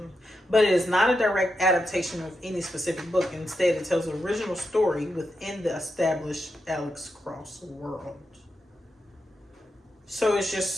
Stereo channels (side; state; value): both; normal; correlation 0.86